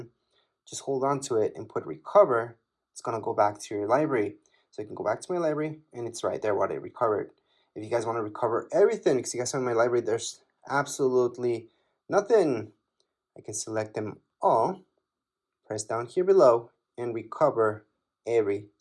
just hold on to it and put recover. It's going to go back to your library. So you can go back to my library and it's right there what I recovered. If you guys want to recover everything, because you guys have in my library, there's absolutely nothing. I can select them all, press down here below, and recover every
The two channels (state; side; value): identical; both; correlation 1.00